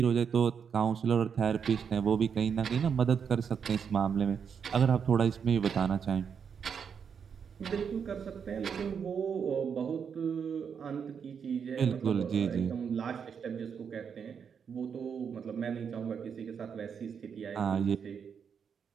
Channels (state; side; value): quieter; left; 6.9 dB